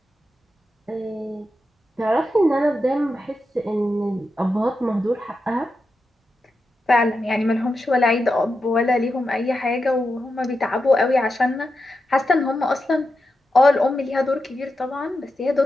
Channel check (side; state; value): both; normal; correlation 0.88